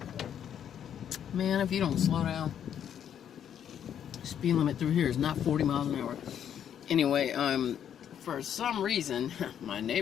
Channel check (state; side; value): quieter; right; 9.2 dB